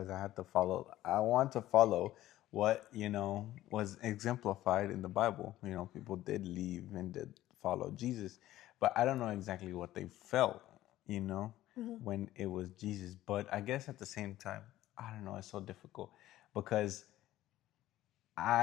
I want to follow what was exemplified in the Bible. People did leave and did follow Jesus, but I don't know exactly what they felt. When it was Jesus. But I guess at the same time, I don't know. It's so difficult because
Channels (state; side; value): quieter; right; 14.7 dB